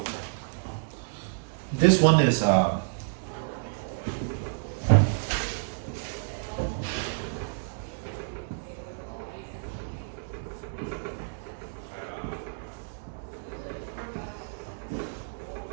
This one is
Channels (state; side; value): silent; left; digital silence